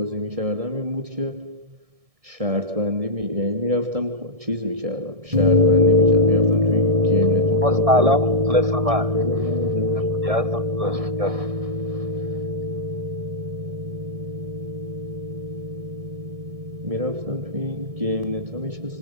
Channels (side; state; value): left; late; 1.7 ms